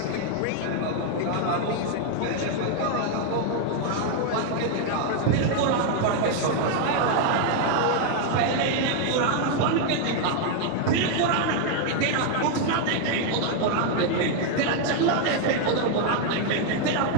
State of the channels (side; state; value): both; different; correlation 0.00